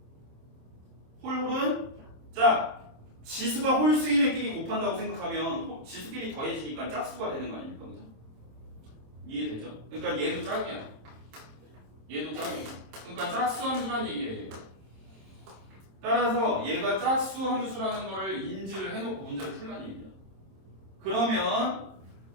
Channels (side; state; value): left; late; 27 ms